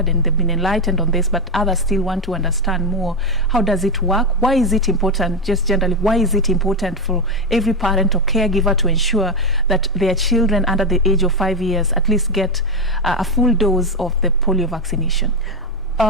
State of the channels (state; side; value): normal; both; correlation 0.10